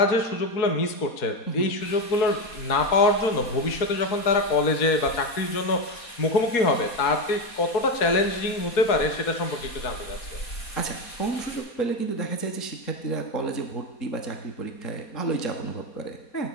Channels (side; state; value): right; late; 4.2 ms